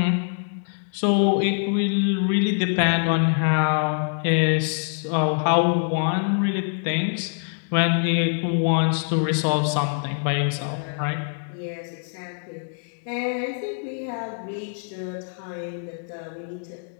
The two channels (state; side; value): silent; right; digital silence